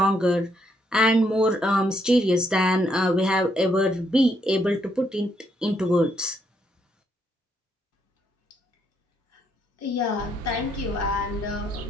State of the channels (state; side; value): normal; both; correlation 0.74